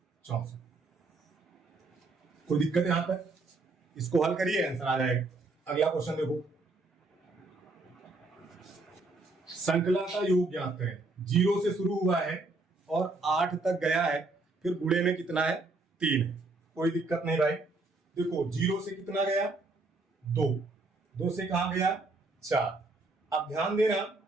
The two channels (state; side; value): quieter; left; 3.3 dB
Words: 64। कोई दिक्कत यहां पर, इसको हल करिए आंसर आ जाएगा। अगला क्वेश्चन देखो, संकला का योग ज्ञात करें। 0 से शुरू हुआ है और 8 तक गया है, फिर गुणे में कितना है, 3 है। कोई दिक्कत नहीं भाई, देखो 0 से कितना गया, 2, 2 से कहां गया, 4। अब ध्यान देना,